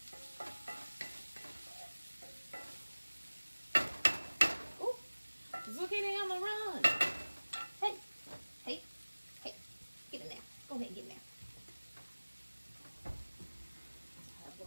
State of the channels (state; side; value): inverted; both; correlation -1.00